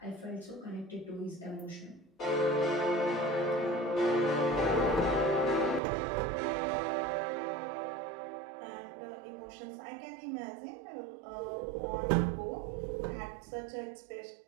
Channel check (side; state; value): left; drops out; at 5.8 s